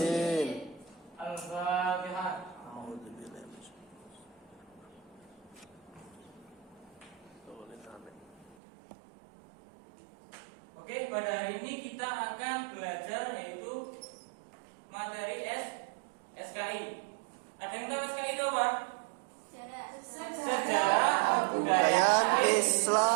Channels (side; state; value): left; drops out; at 8.6 s